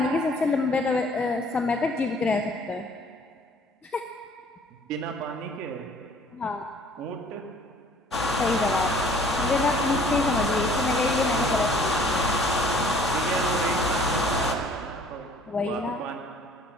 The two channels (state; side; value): normal; both; correlation 0.55